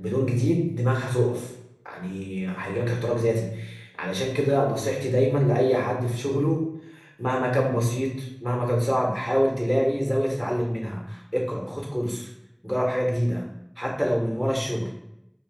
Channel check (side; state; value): both; identical; correlation 1.00